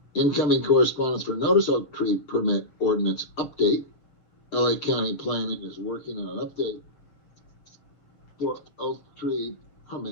Incoming correspondence for notice oak tree permit ordinance update. LA County Planning is working on an update for oak tree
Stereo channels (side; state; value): right; late; 7.1 ms